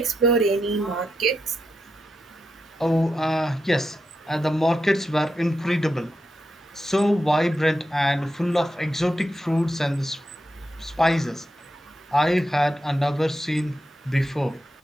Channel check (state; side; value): normal; both; correlation 0.86